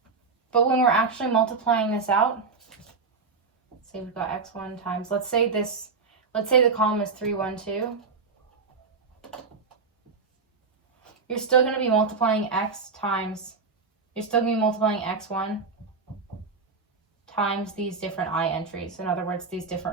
but when we're actually multiplying this out, say we've got x1 times, let's say the column is 3, 1, 2. You're still going to be multiplying x1 times these different I entries. In other words, these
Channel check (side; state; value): left; quieter; 4.6 dB